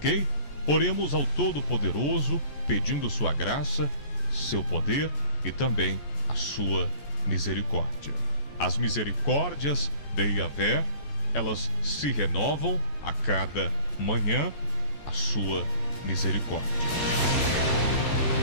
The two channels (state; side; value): late; right; 14 ms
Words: Oremos ao Todo-Poderoso, pedindo sua graça, seu poder e também a sua misericórdia. As misericórdias de Yahvé, elas se renovam a cada manhã, a sua misericórdia.